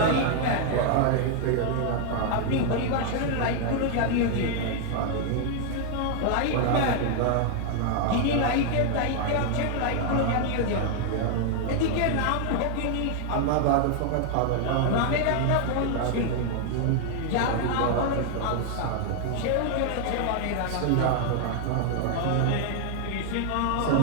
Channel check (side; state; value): both; different; correlation 0.00